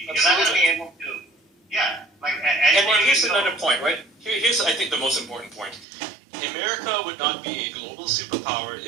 not going to be able to. Yeah, and here's another point, right? Here's, I think, the most important point. America would not be a global superpower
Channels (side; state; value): left; drops out; at 5.9 s